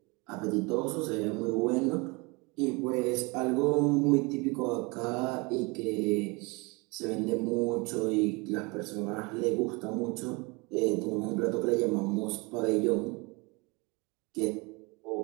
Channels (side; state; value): left; quieter; 27.6 dB